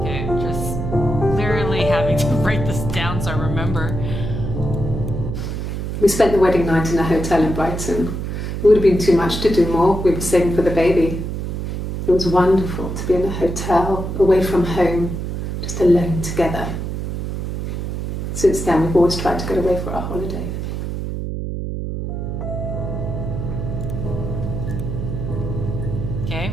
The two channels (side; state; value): right; noise; hum, 4 dB below the sound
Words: Okay, just literally having to write this down so I remember. We spent the wedding night in a hotel in Brighton. It would have been too much to do more. We were saving for the baby. It was wonderful to be in a hotel, away from home, just alone together. Since then, we've always tried to get away for our holiday. Okay,